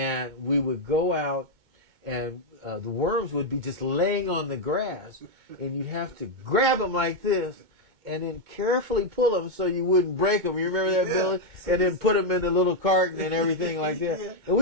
we would go out and the worms would be just laying on the grass, and you'd have to grab them like this, and then carefully pull them so you wouldn't break them. You remember that, Billy? And then put them in the little carton and everything like that. Yeah. And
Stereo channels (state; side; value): late; left; 2.2 ms